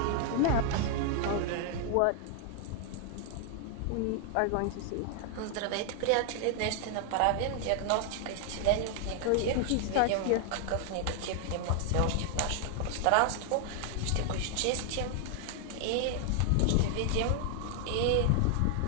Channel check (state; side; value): different; both; correlation 0.00